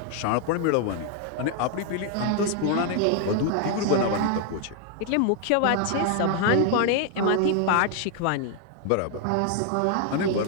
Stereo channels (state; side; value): different; both; correlation 0.00